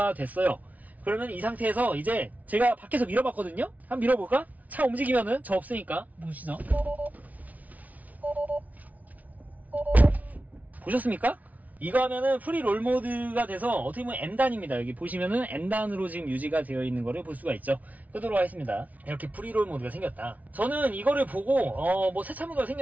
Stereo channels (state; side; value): late; left; 0.073 ms